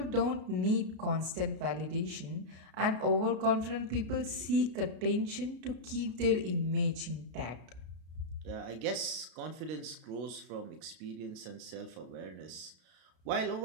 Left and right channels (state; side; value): late; left; 32 ms